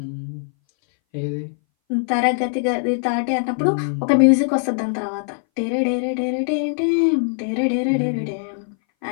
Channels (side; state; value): right; silent; 61 dB below the other